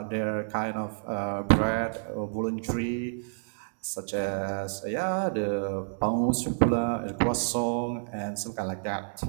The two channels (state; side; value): silent; left; digital silence